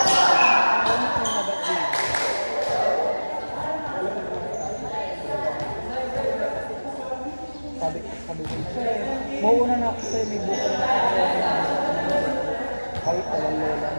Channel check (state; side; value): inverted; both; correlation -1.00